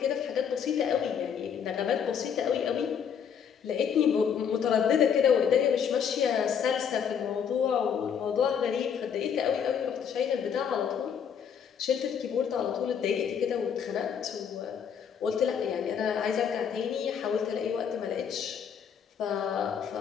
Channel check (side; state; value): right; quieter; 7.6 dB